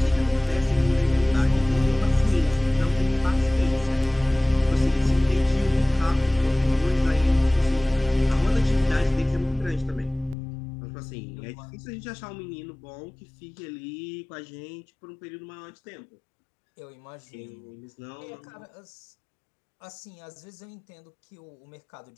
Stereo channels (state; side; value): drops out; right; at 10.4 s